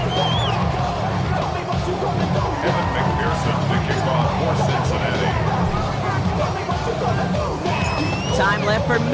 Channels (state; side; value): identical; both; correlation 1.00